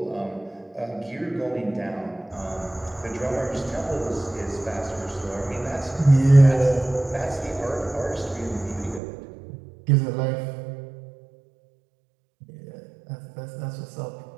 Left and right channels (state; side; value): drops out; left; at 9.0 s